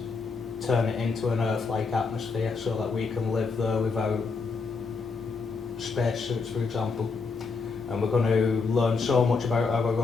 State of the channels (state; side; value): quieter; right; 4.6 dB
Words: turn it into an Earth-like atmosphere so that we can live there without spacesuits, for example. And we're going to learn so much about our